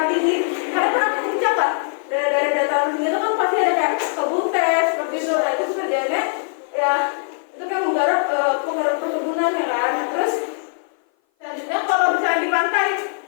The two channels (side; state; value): right; silent; 57 dB below the other